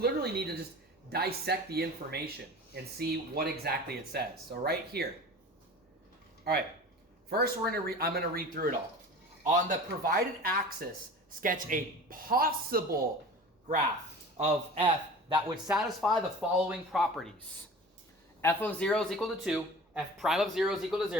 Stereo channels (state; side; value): normal; both; correlation 0.39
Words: need to just dissect the information and see what exactly it says. So right here. All right. First, I'm going to read through it all. On the provided axis, sketch a possible graph of f that would satisfy the following properties. F of 0 is equal to 2, f prime of 0 is equal to